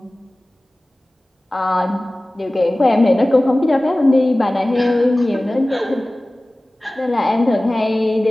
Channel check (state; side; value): normal; both; correlation 0.98